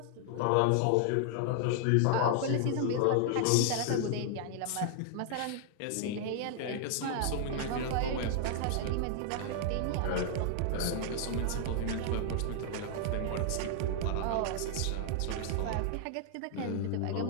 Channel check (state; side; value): different; both; correlation 0.00